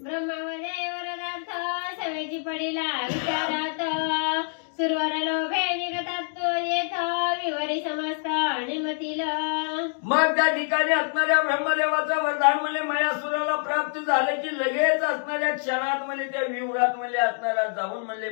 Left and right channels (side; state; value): right; silent; 61 dB below the other